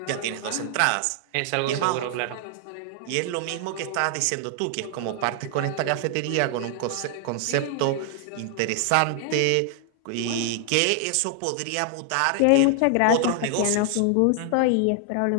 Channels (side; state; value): both; different; correlation 0.00